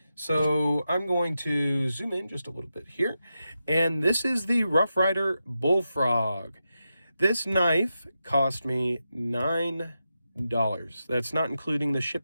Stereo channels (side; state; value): both; inverted; correlation -0.89